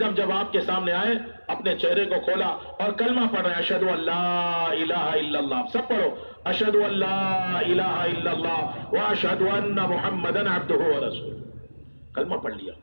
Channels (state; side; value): inverted; both; correlation -1.00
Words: دم جب آپ کے سامنے آئے، اپنے چہرے کو کھولا اور کلمہ پڑھ رہے ہیں، اشہدو ان لا الہ الا اللہ. سب پڑھو، اشہدو ان لا الہ الا اللہ واشہدو ان محمدن عبدہ ورسولہ. کلمہ پڑھ لیا،